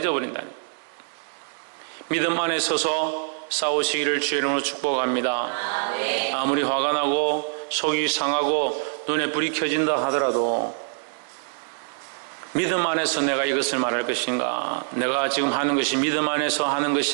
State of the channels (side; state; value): left; silent; digital silence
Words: 거예요. 믿음 안에 서서 싸우시기를 주의 이름으로 축복합니다. 아무리 화가 나고 속이 상하고 눈에 불이 켜진다 하더라도 믿음 안에서 내가 이것을 말할 것인가, 내가 지금 하는 것이 믿음 안에서 하는